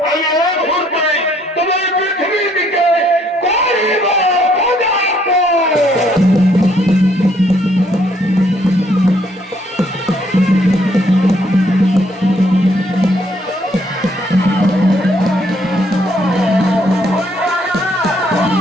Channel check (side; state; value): both; normal; correlation 0.67